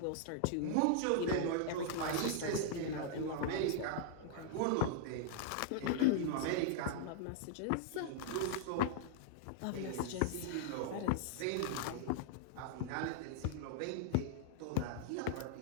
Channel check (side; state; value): both; different; correlation -0.01